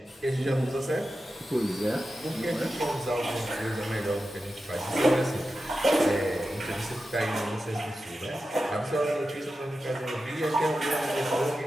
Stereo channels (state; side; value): normal; both; correlation 0.91